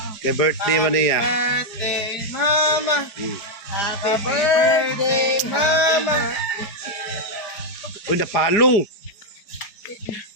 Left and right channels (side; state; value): right; late; 4.8 ms